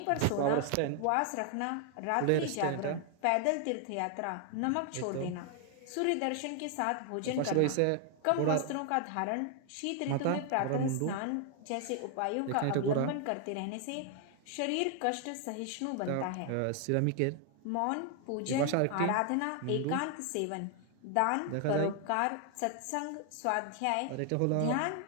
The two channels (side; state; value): both; different; correlation 0.00